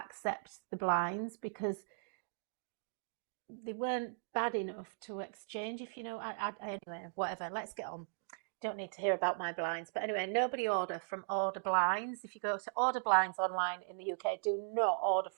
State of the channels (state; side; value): silent; left; digital silence